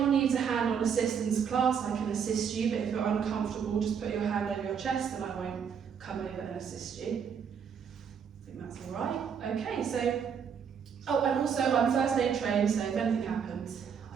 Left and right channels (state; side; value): quieter; left; 7.2 dB